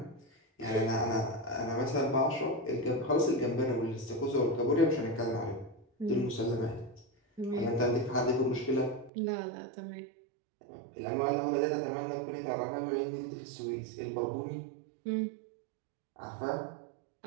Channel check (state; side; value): drops out; left; at 9.1 s